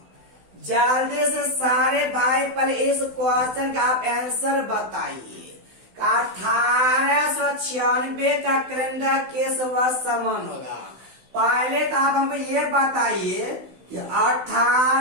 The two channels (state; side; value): late; left; 16 ms